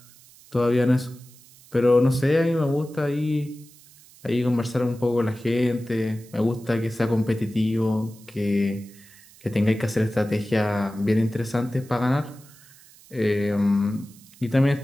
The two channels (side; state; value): right; noise; hiss, 24 dB below the sound